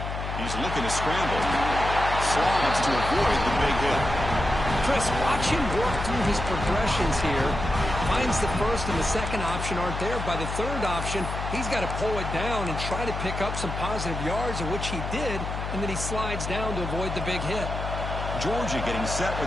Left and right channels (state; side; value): noise; left; hum, 5 dB below the sound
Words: He's looking to scramble. Slides to avoid the big hit. Chris, watch him work through his progressions here. Finds the first and the second option aren't there. By the third option, he's got to pull it down and try to pick up some positive yards, of which he did, and then he slides down to avoid the big hit. Georgia getting set